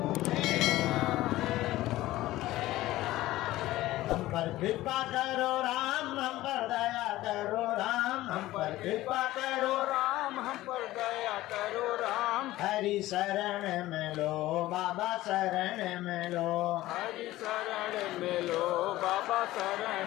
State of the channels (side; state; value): right; quieter; 16.4 dB